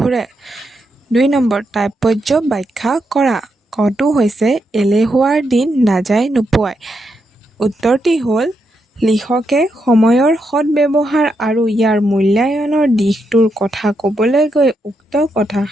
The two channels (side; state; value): both; normal; correlation 0.82